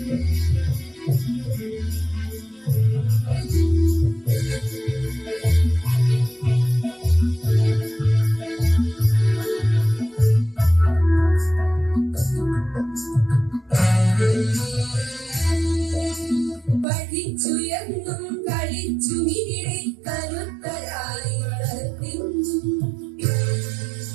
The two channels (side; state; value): left; drops out; at 16.9 s